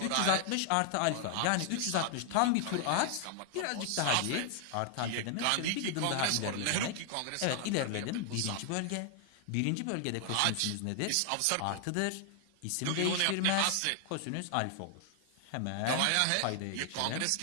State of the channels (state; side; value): different; both; correlation 0.00